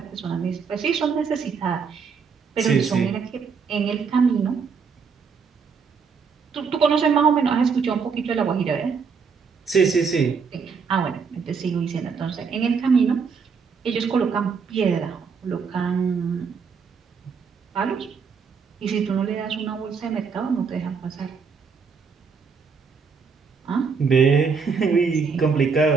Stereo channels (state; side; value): quieter; left; 5.7 dB